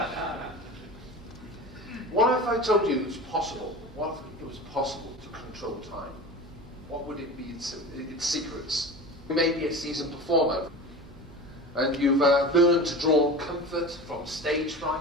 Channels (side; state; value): right; noise; hum, 20 dB below the sound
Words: What if I told you it was possible? What if it was possible to control time? What would it be its secrets? You may be a seasoned performer, and you've learned to draw comfort from stage